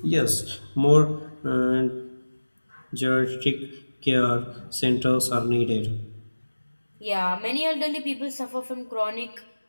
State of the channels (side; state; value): both; inverted; correlation -1.00